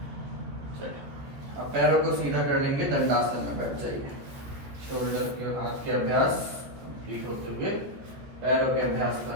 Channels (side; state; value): left; late; 14 ms